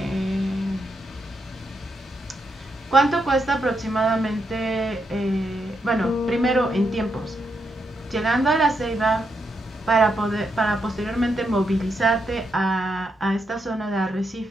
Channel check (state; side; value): normal; both; correlation 0.81